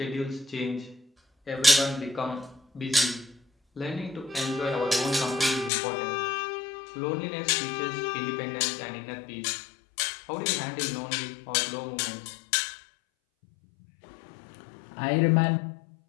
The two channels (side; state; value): right; drops out; at 5.7 s